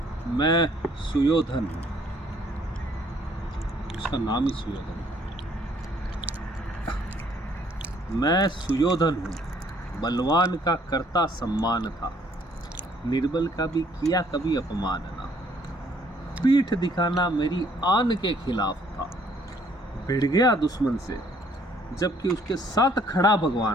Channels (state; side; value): normal; both; correlation 0.63